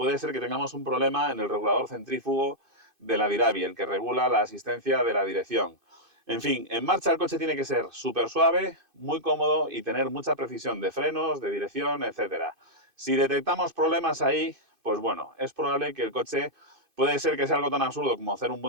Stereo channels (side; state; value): left; late; 2.5 ms